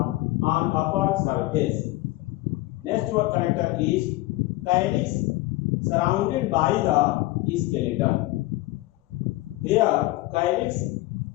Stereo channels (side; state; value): right; quieter; 18.8 dB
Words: on upper surface. Next one character is calyx surrounded by the skeleton. Here, calyx,